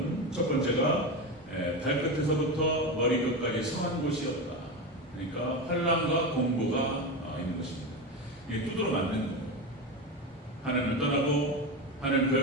첫 번째가 발끝에서부터 머리끝까지 성한 곳이 없다. 그러니까 환난과 공고가 있는 것입니다. 이게 두드러 맞는 거예요. 하나님을 떠나고 하나님을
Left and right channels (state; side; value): normal; both; correlation 0.19